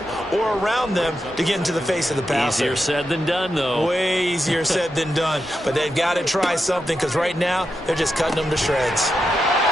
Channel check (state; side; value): normal; both; correlation 0.87